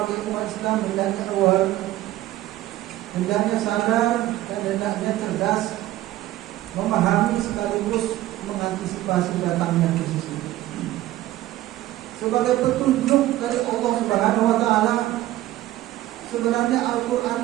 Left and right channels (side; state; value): left; quieter; 15.3 dB